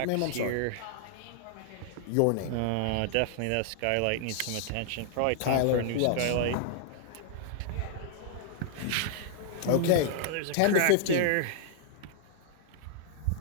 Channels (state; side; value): different; both; correlation 0.00